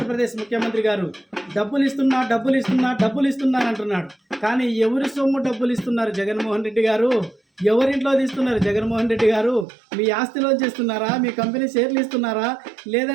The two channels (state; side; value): drops out; left; at 9.7 s